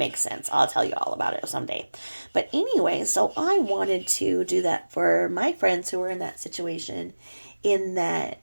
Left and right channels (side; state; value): both; inverted; correlation -1.00